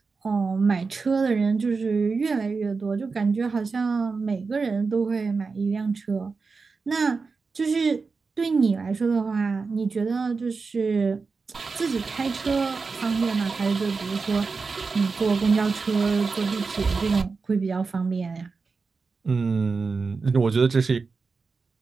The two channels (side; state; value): left; quieter; 4.5 dB